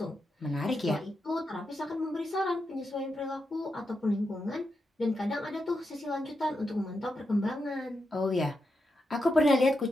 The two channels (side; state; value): both; normal; correlation 0.86